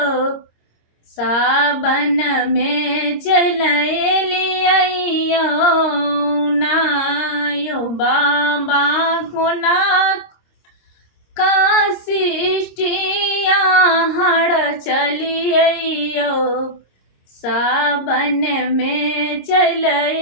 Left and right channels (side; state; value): right; late; 26 ms